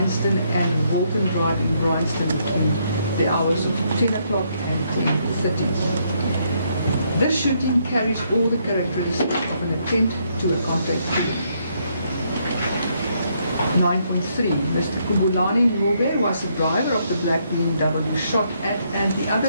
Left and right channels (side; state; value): both; inverted; correlation -0.73